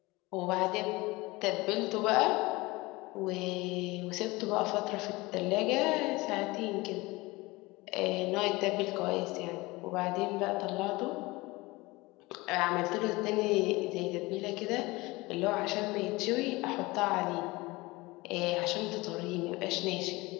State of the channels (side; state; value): right; quieter; 22.1 dB